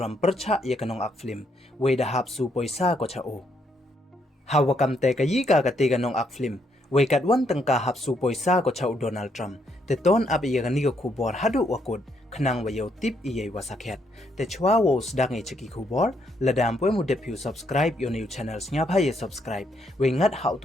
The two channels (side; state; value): both; normal; correlation 0.74